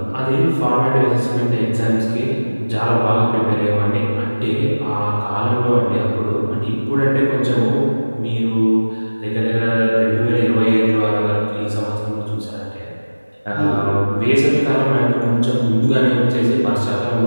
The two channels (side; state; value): both; inverted; correlation -1.00